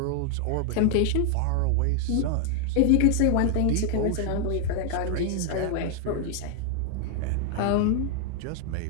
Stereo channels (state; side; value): different; both; correlation 0.00